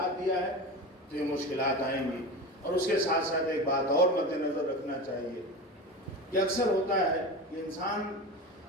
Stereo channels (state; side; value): normal; both; correlation 0.27